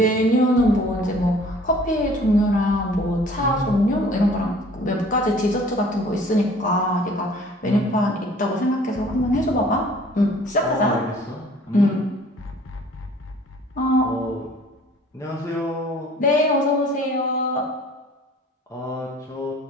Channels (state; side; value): normal; both; correlation 0.52